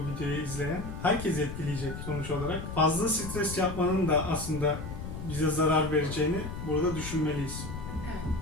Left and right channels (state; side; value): noise; left; rumble, 8 dB below the sound